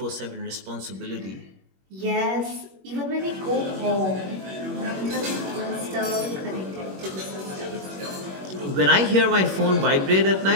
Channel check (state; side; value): late; left; 21 ms